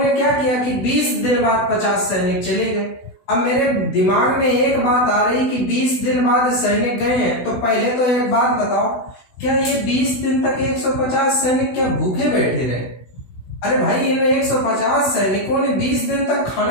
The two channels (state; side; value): late; right; 16 ms